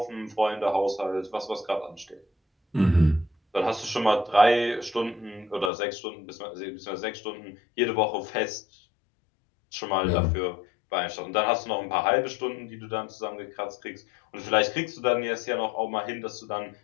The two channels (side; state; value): right; drops out; at 5.7 s